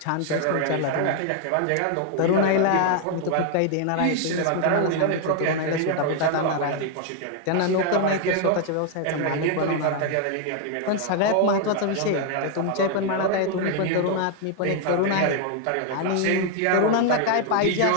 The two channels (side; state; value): both; different; correlation 0.00